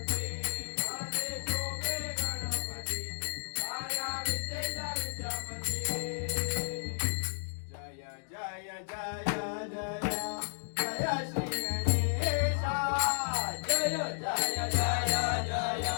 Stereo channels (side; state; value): right; silent; digital silence